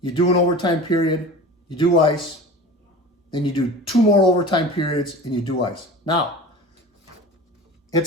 do an overtime period, you do ice, then you do 2 more overtime periods and you do ice. Now,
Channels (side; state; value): both; normal; correlation 0.36